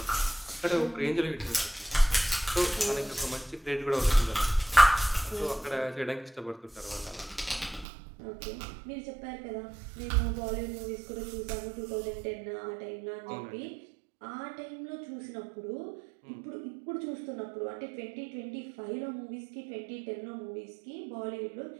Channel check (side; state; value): left; drops out; at 7.9 s